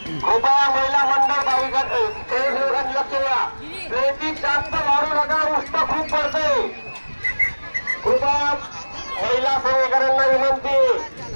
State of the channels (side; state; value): both; inverted; correlation -1.00